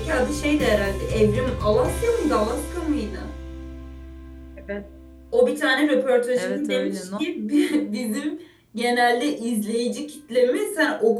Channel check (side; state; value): both; identical; correlation 1.00